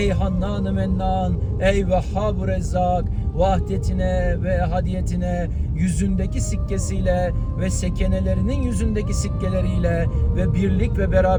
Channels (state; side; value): identical; both; correlation 1.00